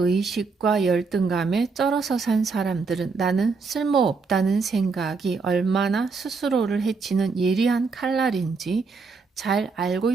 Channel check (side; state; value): left; quieter; 4.6 dB